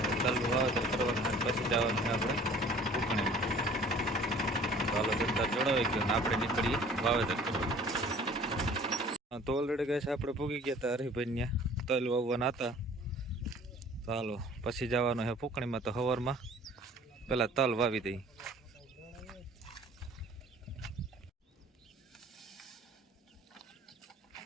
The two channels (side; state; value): both; normal; correlation 0.50